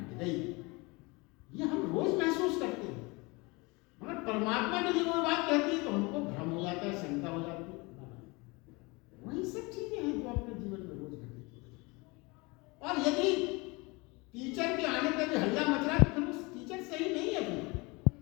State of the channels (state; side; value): quieter; right; 26.0 dB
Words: गई। ये हम रोज महसूस करते हैं, मगर परमात्मा ने जब वो बात कहती है तो हमको भ्रम हो जाता है, शंका हो जाती है। वही सब चीजें हैं जो अपने जीवन में रोज घटित होती हैं। और यदि टीचर के आने पर भी हल्ला मच रहा है तो फिर उस टीचर सही नहीं है।